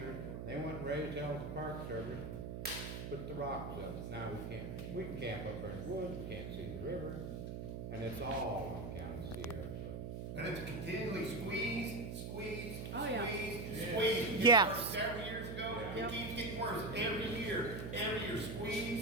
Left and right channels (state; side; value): noise; right; hum, 6 dB below the sound